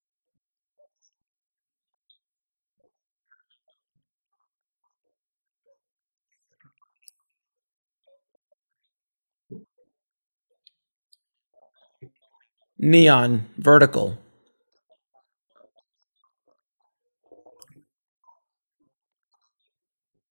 the domestic distributors. A lot of them aren't around today that were around 20 years ago or even 10 years ago, but new ones come into being, whether it's A24, who has not been around forever. Neon, Vertical. Gunpowder and Sky. There's always new people coming in. This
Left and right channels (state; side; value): inverted; both; correlation -1.00